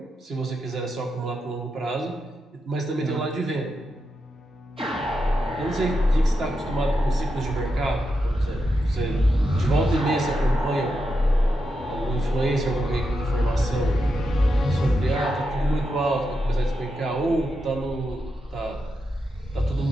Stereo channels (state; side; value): normal; both; correlation 0.86